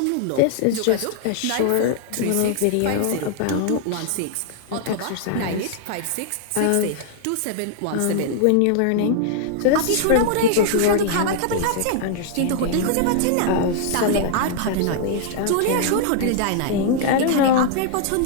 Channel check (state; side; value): different; both; correlation 0.00